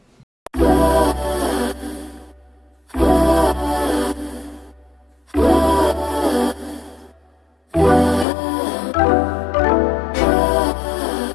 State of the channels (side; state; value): right; drops out; at 8.2 s